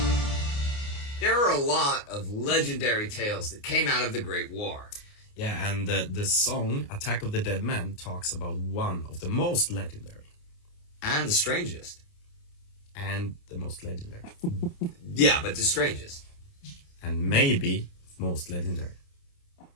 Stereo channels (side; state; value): right; late; 29 ms